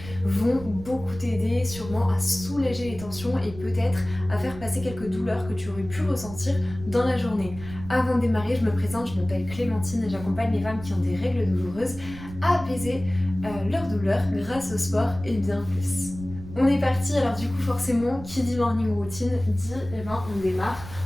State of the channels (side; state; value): right; noise; rumble, 14 dB below the sound